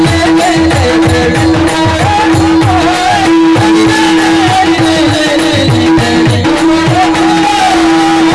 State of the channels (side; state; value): both; identical; correlation 1.00